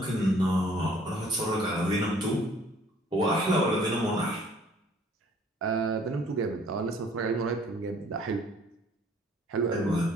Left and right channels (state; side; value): normal; both; correlation 0.57